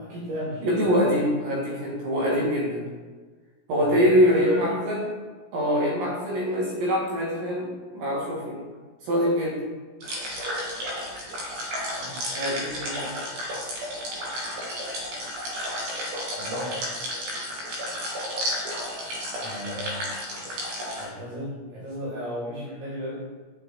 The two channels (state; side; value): late; left; 17 ms